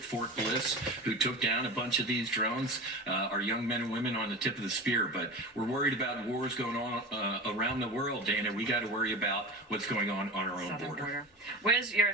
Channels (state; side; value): normal; both; correlation 0.30